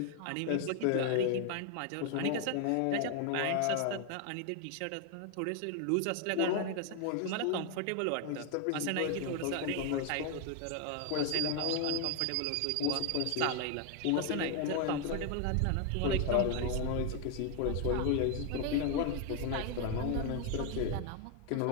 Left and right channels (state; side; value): different; both; correlation 0.01